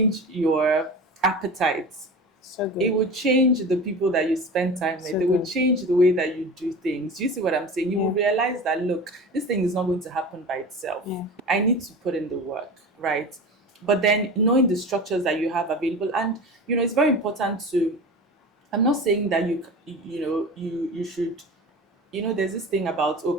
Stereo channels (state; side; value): normal; both; correlation 0.32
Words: your appetite. So It good. would change the people that you spend time with. So It would good. change the way that you do things. You see what I'm saying? You will Yeah. realize that, look, this thing is not going to happen by itself. Yeah. I need to put in the work, right? But then knowing the structures that you have available, and it's very important to. I'm not saying that you should. There's this thing about, oh,